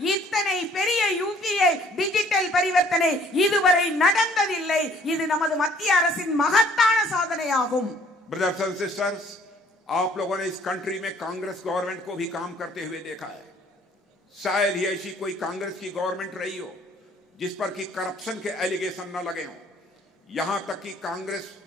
இத்தனை பெரிய யூபிஐ டிஜிட்டல் பரிவர்த்தனை இதுவரை நடந்ததில்லை. இது நமது மத்திய அரசின் மகத்தான சாதனையாகும். ब्रदर्स एंड सिस्टर्स, आप लोगों ने इस कंट्री में कांग्रेस गवर्नमेंट को भी काम करते हुए देखा है। शायद ही ऐसी कोई कांग्रेस की गवर्नमेंट रही हो जिस पर कि करप्शन के एलिगेशन न लगे हों। यहां तक कि कांग्रेस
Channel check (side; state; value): both; normal; correlation 0.59